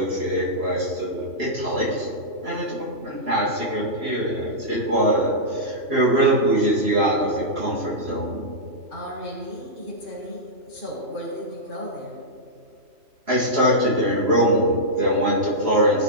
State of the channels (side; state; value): left; late; 3.0 ms